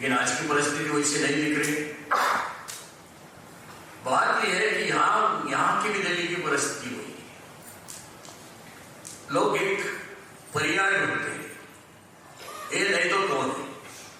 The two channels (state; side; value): identical; both; correlation 1.00